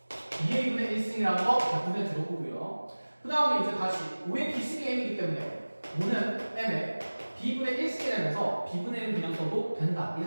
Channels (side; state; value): both; inverted; correlation -1.00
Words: 2A분의 1승이라는 거 자, 눈에 들어보고요. 그 다음에 이제 다시 5의 B승이 M이기 때문에 5는 M의 B분의 1승이 되면서 B분의 1은 그냥 써도 된다,